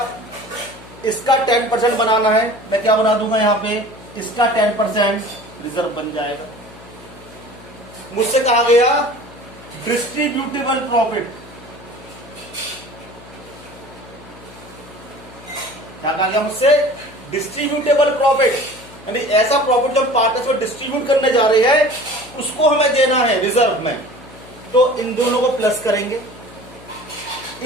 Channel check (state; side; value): noise; left; hum, 20 dB below the sound